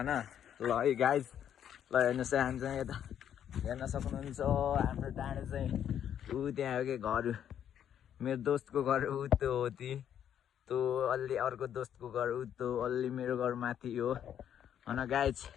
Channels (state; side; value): quieter; right; 9.6 dB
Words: ल है गाइज, ल हेर्नुस् है, हामी चाहिँ यता हेर्न सक्नुहुन्छ हाम्रो डाँडो चाहिँ ऊ त्यहाँ हो के घर। मेरो दोस्तको घर ऊ त्यो हो त्यो अलि अर्को दोस्तको घर ऊ त्यो अलि मेरो घर माथि हो हैन गाइज।